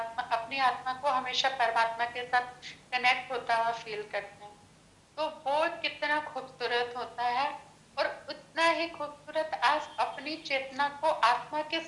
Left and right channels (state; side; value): identical; both; correlation 1.00